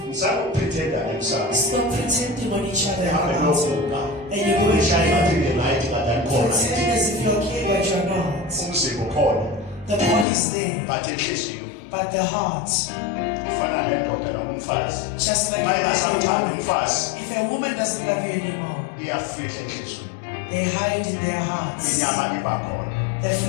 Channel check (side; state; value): right; drops out; at 10.2 s